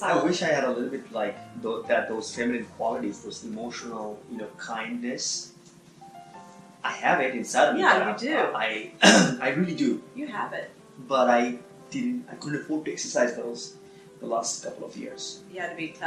I wish I had a little bit like those feminine qualities, those emotional, kindness. I have it inside of me. Yeah, you do. I really do. You have it. But I couldn't afford to exercise those the last couple of years. You had to be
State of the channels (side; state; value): both; identical; correlation 1.00